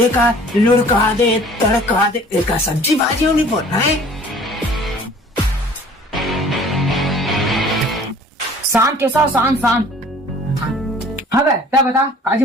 लुढ़का दे तड़का दे एक सब्जी भाजी नहीं बोलना है. शान के साथ शान शान. हाँ बे क्या बता आज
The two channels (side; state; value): both; normal; correlation 0.51